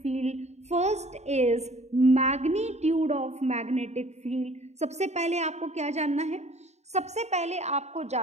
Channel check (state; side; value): late; left; 0.32 ms